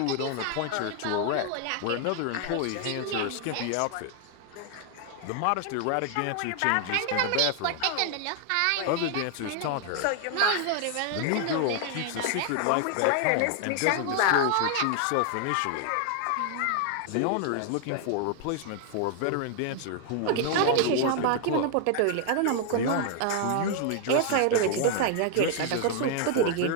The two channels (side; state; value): both; different; correlation 0.00